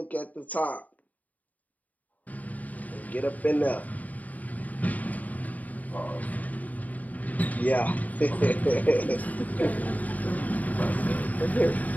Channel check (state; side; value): late; right; 0.074 ms